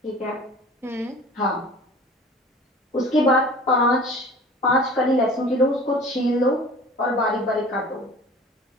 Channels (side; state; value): both; normal; correlation 0.43